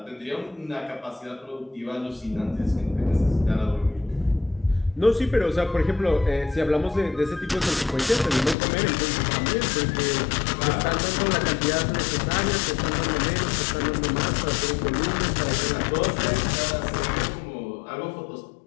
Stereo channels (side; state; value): right; drops out; at 8.6 s